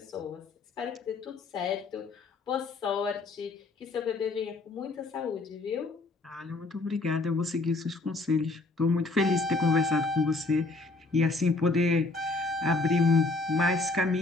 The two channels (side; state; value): right; quieter; 3.4 dB